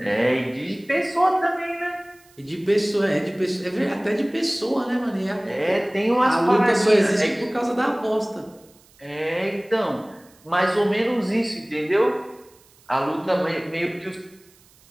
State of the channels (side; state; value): right; noise; hiss, 29 dB below the sound